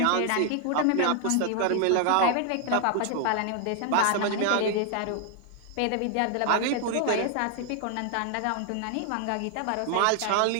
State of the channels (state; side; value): different; both; correlation 0.00